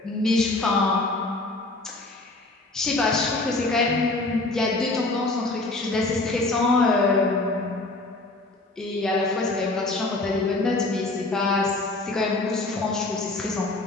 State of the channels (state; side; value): quieter; right; 3.1 dB